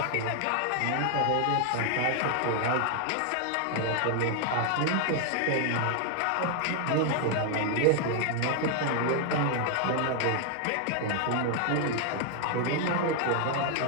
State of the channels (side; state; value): both; different; correlation 0.00